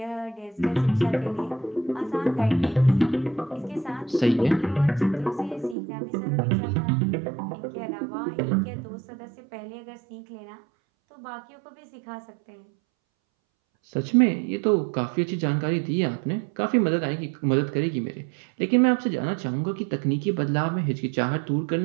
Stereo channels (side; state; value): left; drops out; at 5.8 s